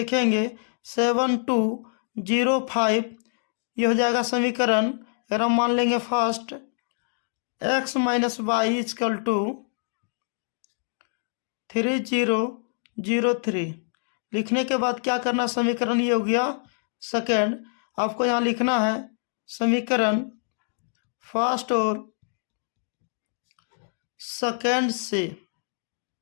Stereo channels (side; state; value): right; silent; digital silence